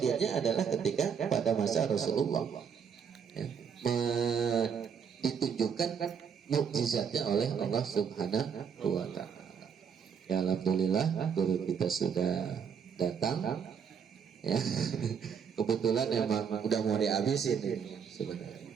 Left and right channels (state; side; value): quieter; left; 7.0 dB